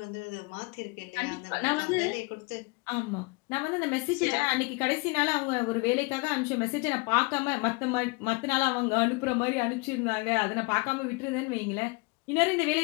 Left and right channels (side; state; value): right; quieter; 27.6 dB